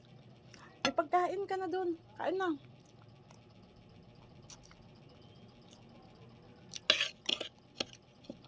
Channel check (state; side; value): identical; both; correlation 1.00